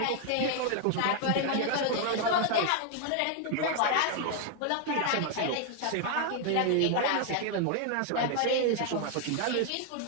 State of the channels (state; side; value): different; both; correlation 0.00